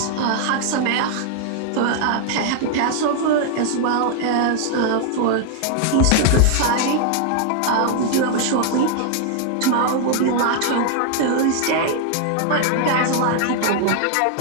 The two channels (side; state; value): both; different; correlation 0.00